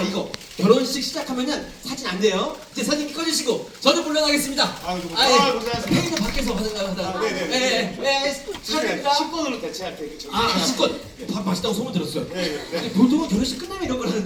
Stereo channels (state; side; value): identical; both; correlation 1.00